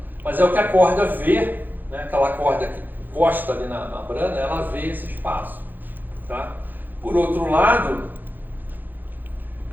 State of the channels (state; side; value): late; left; 0.087 ms